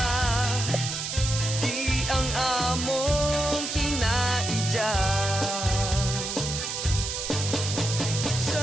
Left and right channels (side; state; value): right; noise; hiss, 4 dB below the sound